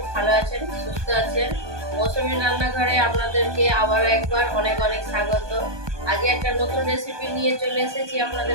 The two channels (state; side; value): late; left; 1.2 ms